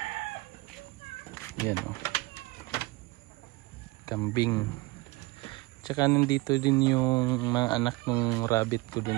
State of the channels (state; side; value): quieter; left; 22.8 dB